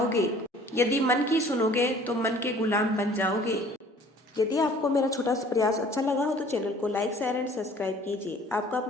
यदि मन की सुनोगे तो मन के गुलाम बन जाओगे। यदि आपको मेरा छोटा सा प्रयास अच्छा लगा हो तो चैनल को लाइक शेयर एंड सब्सक्राइब कीजिए। आपका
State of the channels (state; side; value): normal; both; correlation 0.52